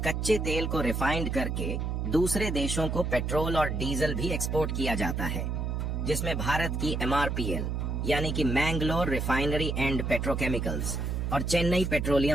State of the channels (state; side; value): noise; right; hum, 1 dB below the sound